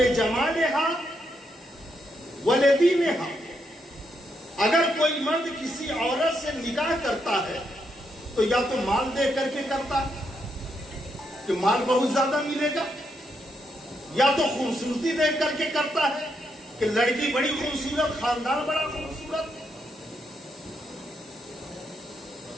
ولدینہا۔ اگر کوئی مرد کسی عورت سے نکاح کرتا ہے تو یا تو مال دے کر کے کرتا ہے کہ مال بہت زیادہ ملے گا، یا تو خوبصورتی دیکھ کر کے کرتا ہے کہ لڑکی بڑی خوبصورت، خاندان بڑا خوبصورت،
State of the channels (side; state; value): both; normal; correlation 0.80